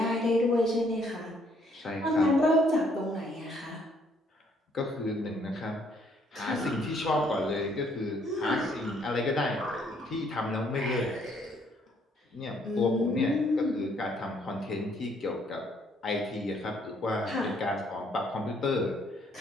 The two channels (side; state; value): both; normal; correlation 0.66